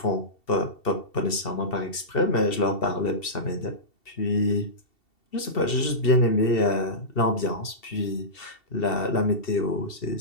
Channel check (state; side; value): late; right; 2.7 ms